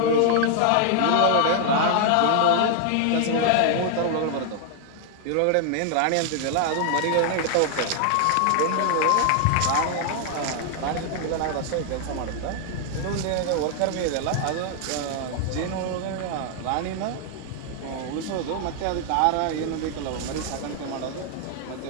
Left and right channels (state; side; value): different; both; correlation 0.00